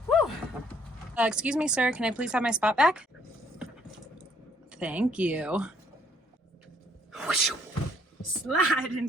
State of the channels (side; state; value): both; normal; correlation 0.65